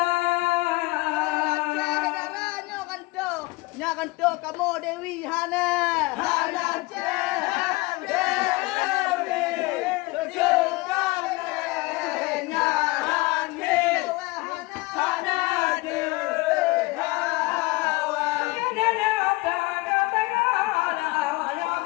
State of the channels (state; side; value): quieter; right; 23.0 dB